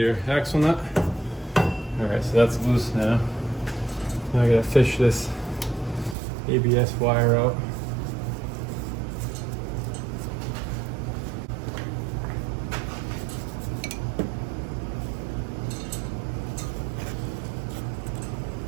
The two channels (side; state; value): left; drops out; at 6.2 s